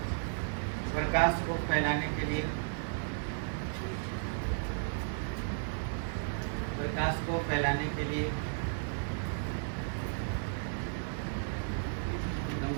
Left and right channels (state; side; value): silent; left; digital silence